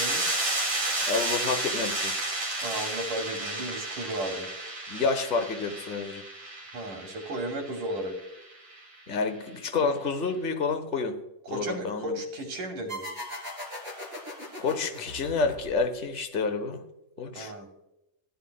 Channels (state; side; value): late; left; 10 ms